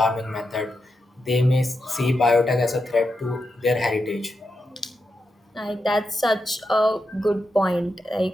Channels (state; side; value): normal; both; correlation 0.87